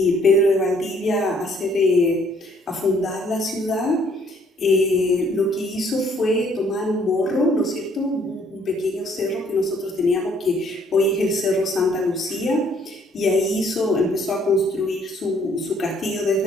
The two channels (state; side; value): normal; both; correlation 0.64